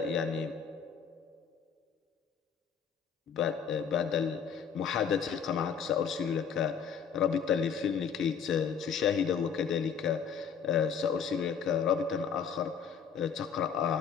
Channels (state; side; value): quieter; right; 6.9 dB